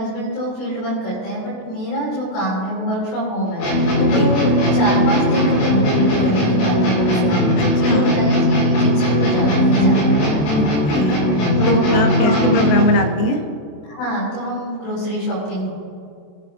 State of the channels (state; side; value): late; right; 27 ms